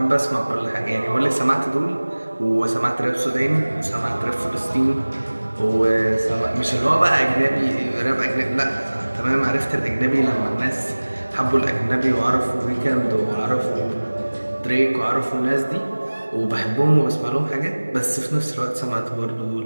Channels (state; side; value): inverted; both; correlation -1.00